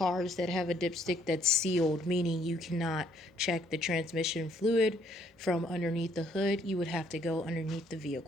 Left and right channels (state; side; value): normal; both; correlation 0.66